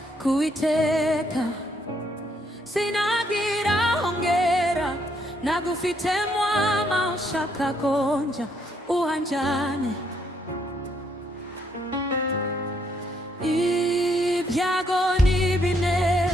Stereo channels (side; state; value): both; normal; correlation 0.72